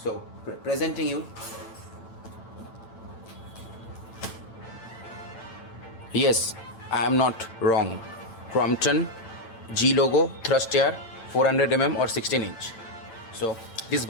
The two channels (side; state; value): right; late; 8.9 ms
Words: presenting you. Yes, I am not wrong. Crompton G logo thrust air 400 or 16 inch. So this